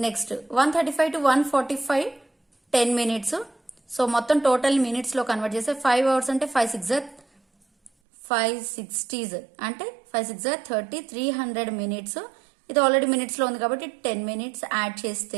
Next 1:35 to 1:45 10 minutes. So మొత్తం total minutes లో కన్వర్ట్ చేస్తే 5 అవర్స్ అంటే 5 60s అంటే 5 6 30 300 మినిట్స్. ఇది ఆల్రెడీ మినిట్స్ లో ఉంది కాబట్టి 10 మినిట్స్ యాడ్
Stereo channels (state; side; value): drops out; left; at 7.9 s